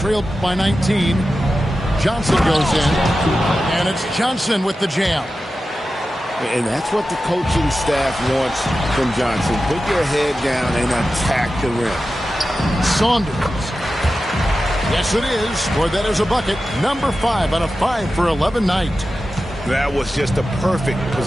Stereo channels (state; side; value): normal; both; correlation 0.93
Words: by 19. Johnson goes in. And it's Johnson with the jam. And that's what the coaching staff wants from Johnson. Put your head down and attack the rim. Saunders. Yes, it is. For that is a bucket. Number 5 on a 5 for 11 night. That was just a perfect